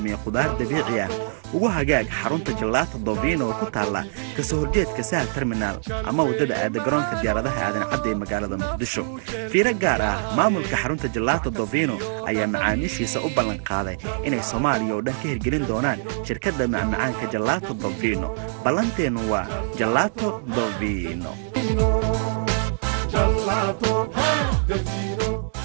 khudaar dabiici ah ugu hagaag xarunta Gelato Dovino oo ku taala kasoo horjeedka Sahal Terminal ama wadada aada garoonka diyaaradaha aadan cadde ee magaalada Muqdisho fiiro gaar ah maamulka xarunta Gelato Dovino ayaa macaamiishiisa u ballan qaaday inay Soomaaliya oo dhan ka hirgelin doonaan shirkadda macmacaanka Gelato Dovino ballanteenu waa Gelato Dovino Gelato Dovino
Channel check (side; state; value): left; silent; digital silence